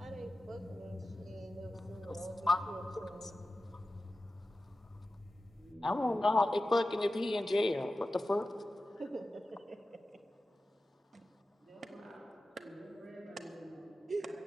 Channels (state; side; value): normal; both; correlation 0.94